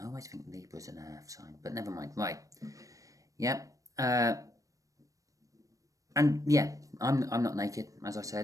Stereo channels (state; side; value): late; left; 0.16 ms